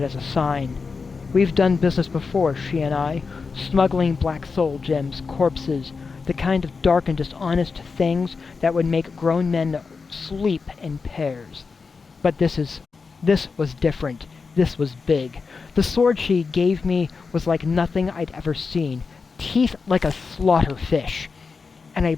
as a sign. We've done business before, she and I. Smuggling black soul gems, corpses, the kind of dark and dishonest things that would make grown men sleep in pairs. But this was different. This was big. The sword she gave me was like nothing I'd ever seen. Teeth like a slaughter fish. And a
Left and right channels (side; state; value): right; quieter; 4.8 dB